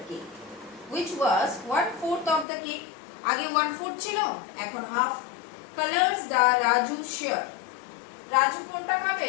cake, which was 1/4 of the cake. আগে 1/4 ছিল, এখন half. Colors the Raju share. Raju কোনটা খাবে?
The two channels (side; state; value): right; drops out; at 2.5 s